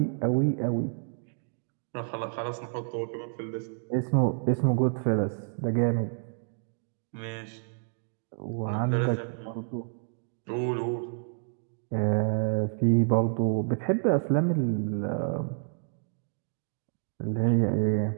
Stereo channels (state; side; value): silent; left; 58 dB below the other